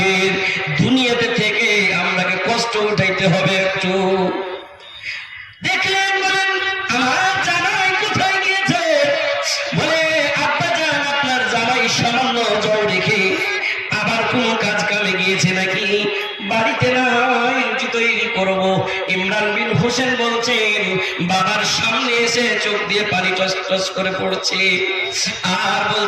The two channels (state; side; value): identical; both; correlation 1.00